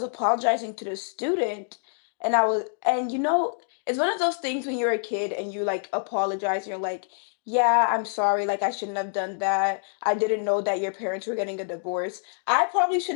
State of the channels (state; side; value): silent; right; digital silence